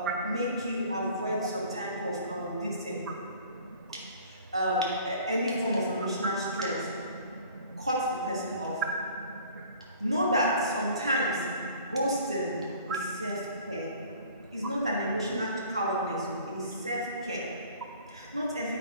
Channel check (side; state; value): both; inverted; correlation -0.49